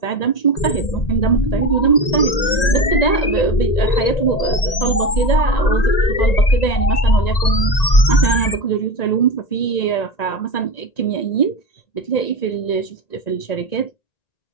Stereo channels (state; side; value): late; right; 1.9 ms